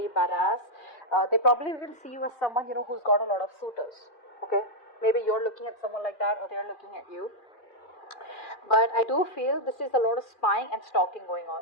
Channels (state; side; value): late; right; 2.4 ms